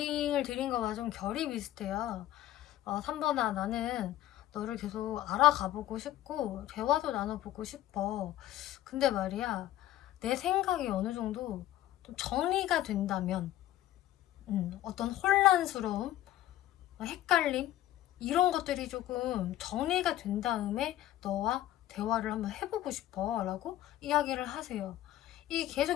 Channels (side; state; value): right; quieter; 13.6 dB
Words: 드린 거와 좀 결이 비슷해요. 3번아 나는 너를 계속 알아가보고 싶고 대화도 나눠보고 싶어. 근데 말이야 내 생각이 어느 정도 좀 정리가 된다면 어떤 혼란스러움, 헷갈림 이런 것들이 조금 정리가 된 다음에 너와 대화를 한번 해보고 싶어 라고 이야기를 하세요. 이